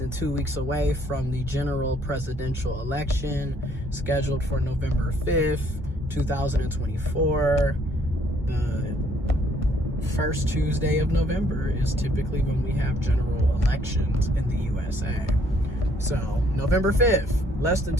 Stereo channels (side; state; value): both; normal; correlation 0.65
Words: 2 weeks away from the general presidential election scheduled for November 5th, 2024. The first Tuesday of November is typically when we have general elections in the USA. So, November 5th, less than